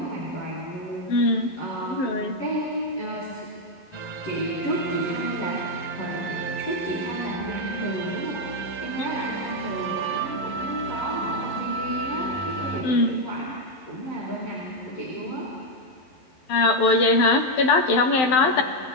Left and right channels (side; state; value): right; late; 12 ms